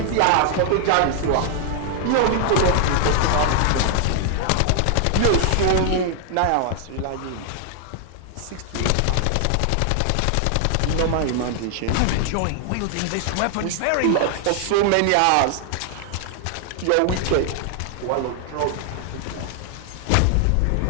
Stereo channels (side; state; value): both; different; correlation 0.00